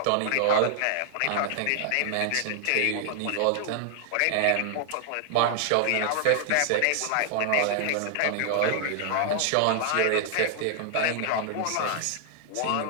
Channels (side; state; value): both; different; correlation -0.01